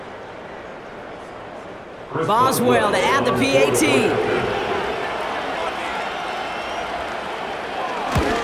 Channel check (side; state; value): both; identical; correlation 1.00